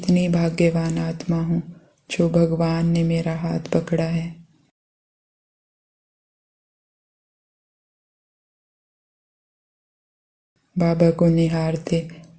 भाग्यवान आत्मा हूँ जो भगवान ने मेरा हाथ पकड़ा है। बाबा को निहारते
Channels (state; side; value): identical; both; correlation 1.00